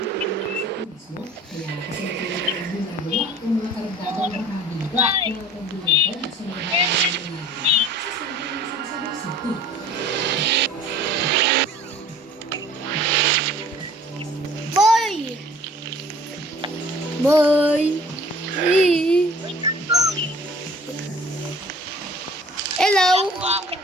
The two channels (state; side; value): normal; both; correlation 0.49